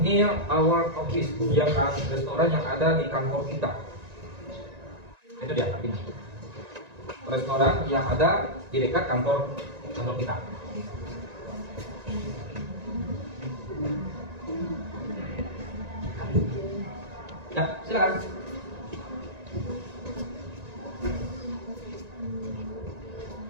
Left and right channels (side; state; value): left; late; 1.9 ms